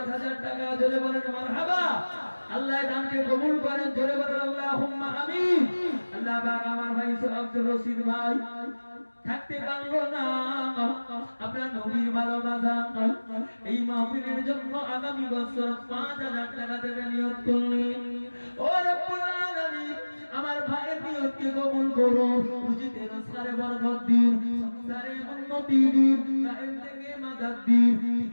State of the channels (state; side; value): inverted; both; correlation -1.00